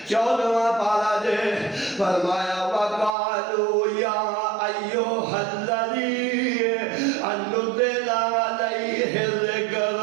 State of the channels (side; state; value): left; drops out; at 3.2 s